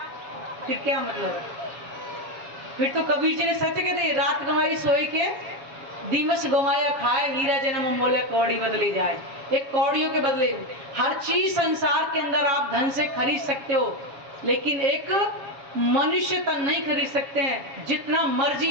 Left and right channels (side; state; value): left; late; 7.2 ms